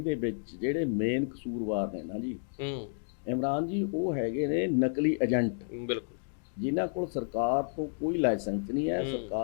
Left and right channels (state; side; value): silent; right; digital silence